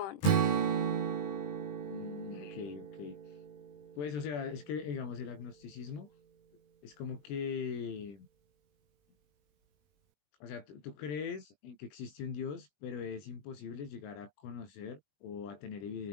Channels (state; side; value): late; right; 20 ms